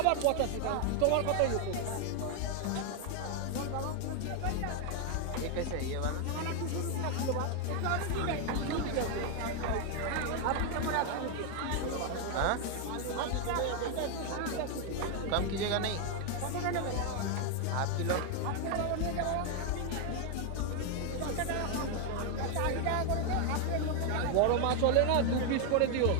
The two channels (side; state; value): both; different; correlation 0.01